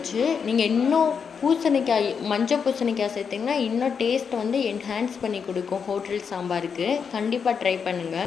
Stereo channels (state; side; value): quieter; right; 6.4 dB